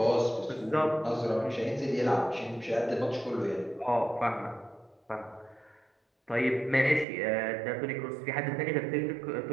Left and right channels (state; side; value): drops out; left; at 7.1 s